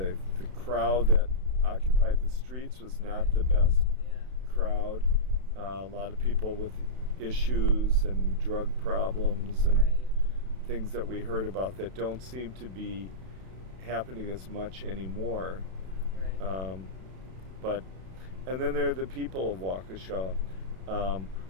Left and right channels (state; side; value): late; left; 32 ms